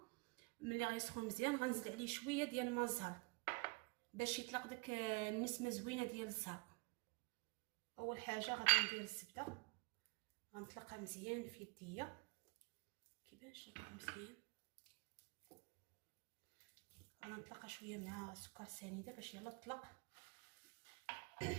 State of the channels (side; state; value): left; quieter; 29.7 dB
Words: ملي غيسخن مزيان غنزيد عليه شويه ديال الماء الزهر باش يطلق داك النسمه زوينه ديال الزهر. اول حاجه غادي ندير الزبده، غنطلقها مزيان في يديا كيبانش لكم مزيان. غنطلقها شويه مع سكر سنيده باش يلا تطلق.